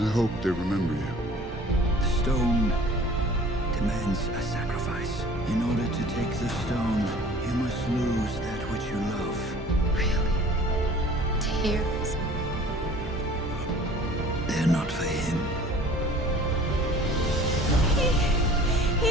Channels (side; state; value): both; normal; correlation 0.48